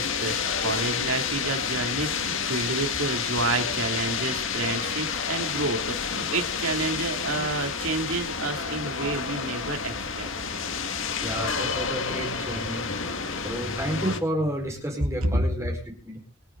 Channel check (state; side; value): normal; both; correlation 0.17